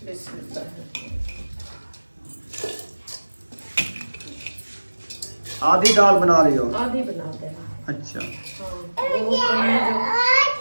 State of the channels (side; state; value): both; inverted; correlation -1.00